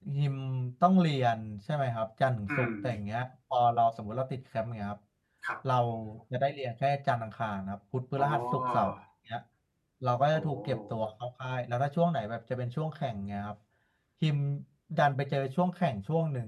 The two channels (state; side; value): identical; both; correlation 1.00